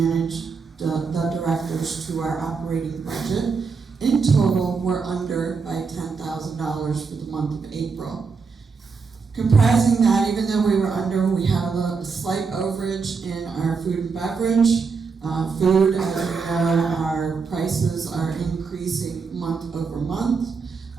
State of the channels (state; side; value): quieter; left; 5.1 dB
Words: the directors to our operating budget, in total were under by $10,000 for the month of April. Comprising that, even though we were under, we have a slight overage in our food and beverage. Food, as you know, our prices are increasing month over month.